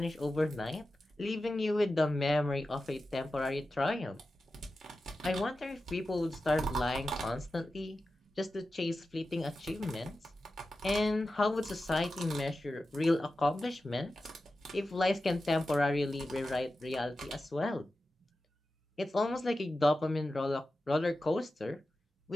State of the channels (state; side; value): normal; both; correlation 0.93